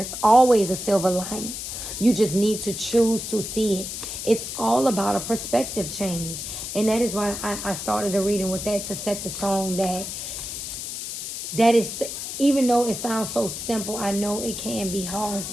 always a silver lining. You just need to choose to see it. It's all about a perspective change. And that is why I started the reading with that, to set the tone that is, even though it sounds so simple, I know it can be hard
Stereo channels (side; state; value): left; noise; hiss, 6 dB below the sound